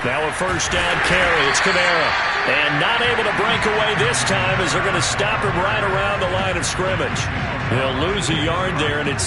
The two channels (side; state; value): both; identical; correlation 1.00